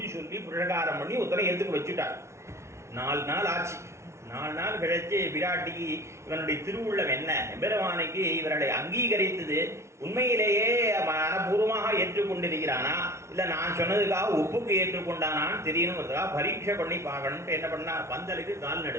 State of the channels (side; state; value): left; late; 0.13 ms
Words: சொல்லி புரகாரம் பண்ணி ஒருத்தரை எதுக்கு வச்சுட்டார். 4 நாள் ஆச்சு. 4 நாள் கழிச்சு பிராட்டிக்கு இவனுடைய திருவுள்ளம் என்ன, எம்பெருமானுக்கு இவர்களை அங்கீகரித்தது உண்மையிலேயே மனப்பூர்வமாக ஏற்றுக்கொண்டிருக்கிறானா இல்லை நான் சொன்னதுக்காக ஒப்புக்கு ஏற்றுக்கொண்டானான்னு தெரியணுங்கிறதுக்காக பரீட்சை பண்ணி பார்க்கணும்ட்டு என்ன பண்ணா, பந்தலுக்கு கால்